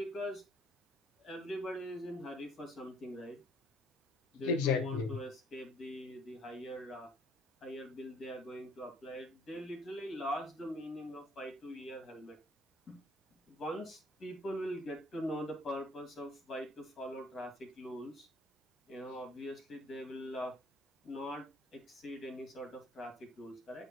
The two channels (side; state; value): both; normal; correlation 0.58